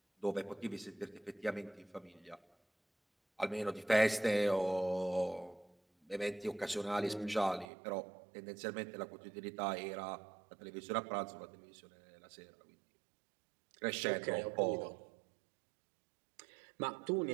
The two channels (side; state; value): left; drops out; at 7.7 s